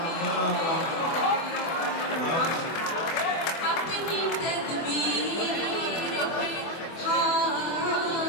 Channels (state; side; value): late; right; 24 ms